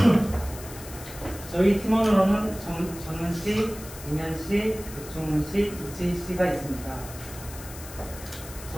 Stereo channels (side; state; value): left; noise; hiss, 15 dB below the sound